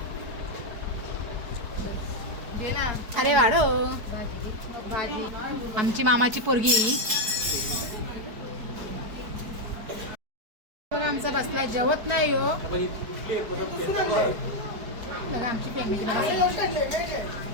अरे वाढो. आमची मामाची पोरगी बघा आमचा बसलाय जेवत नाही हो. बघा आमची फॅमिली बघा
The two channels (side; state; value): left; late; 4.7 ms